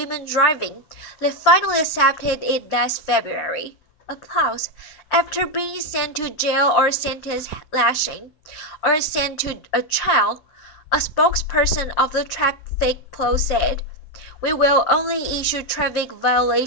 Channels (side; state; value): right; late; 7.3 ms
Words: driving, they finally accepted it last February. Applause. After being sent to jail or sentenced lashing, or sent to a trial, a spokesperson of the traffic police said, "We will only issue traffic